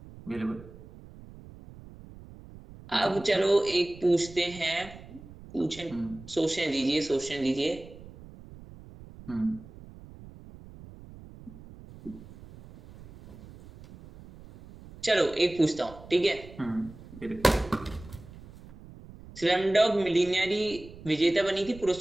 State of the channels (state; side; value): noise; right; rumble, 18 dB below the sound